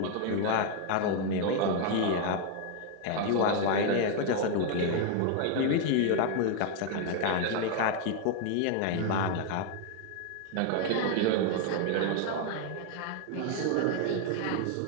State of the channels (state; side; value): different; both; correlation 0.01